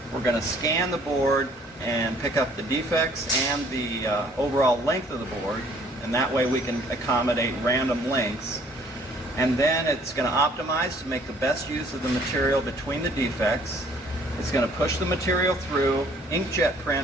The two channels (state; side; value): normal; both; correlation 0.58